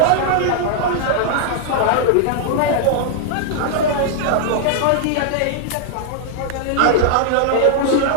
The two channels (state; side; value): different; both; correlation -0.01